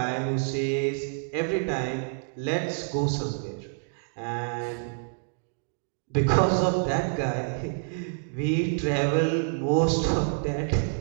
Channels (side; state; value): left; silent; digital silence